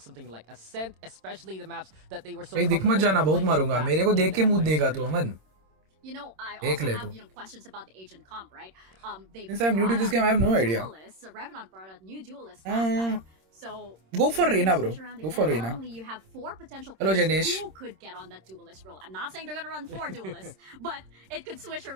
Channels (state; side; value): late; left; 26 ms